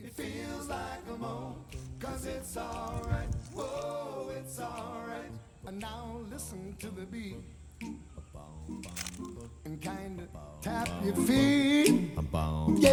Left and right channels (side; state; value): both; identical; correlation 1.00